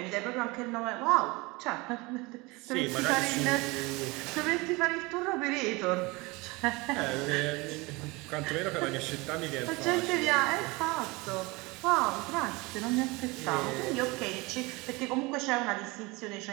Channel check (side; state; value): left; quieter; 24.4 dB